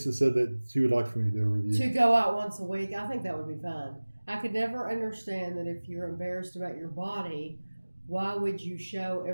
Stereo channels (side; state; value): both; inverted; correlation -1.00